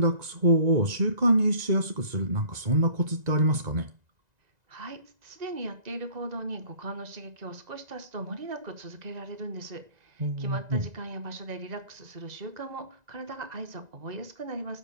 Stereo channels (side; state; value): left; late; 1.9 ms